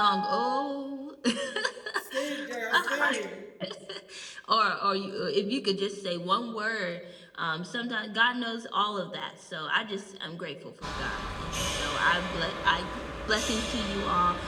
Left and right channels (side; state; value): both; identical; correlation 1.00